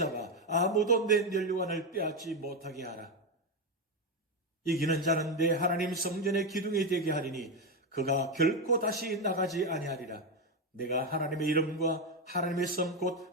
아무도 내 면류관을 빼앗지 못하게 하라. 이기는 자는 내 하나님 성전의 기둥이 되게 하리니 그가 결코 다시 나가지 아니하리라. 내가 하나님의 이름과 하나님의 성 곧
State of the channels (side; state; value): both; normal; correlation 0.09